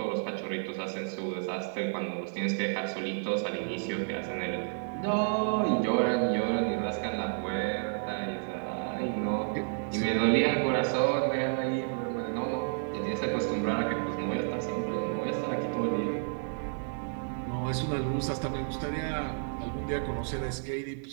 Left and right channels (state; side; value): silent; left; digital silence